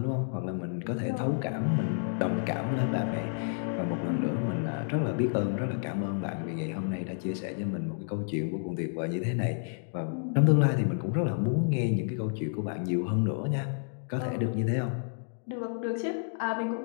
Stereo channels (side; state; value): right; silent; digital silence